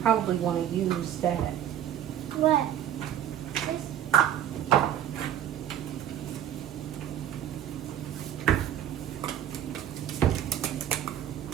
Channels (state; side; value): quieter; left; 10.6 dB